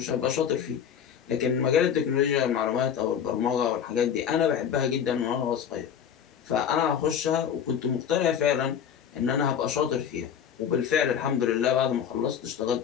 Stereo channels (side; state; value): right; quieter; 8.4 dB